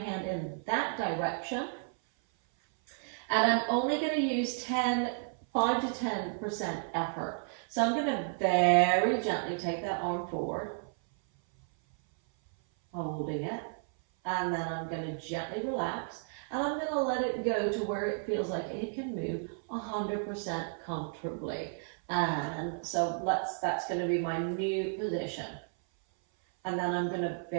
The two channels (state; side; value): silent; left; 56 dB below the other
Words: in that direction. And I'm only going to use 5 to 10% effort. So I'm going to very gently take that arm forward, holding it. And then I'm going to gently relax. And I'm going to let it go to where it feels like it can move 100% comfortably. And so that's going to be my new position. And then I'm going to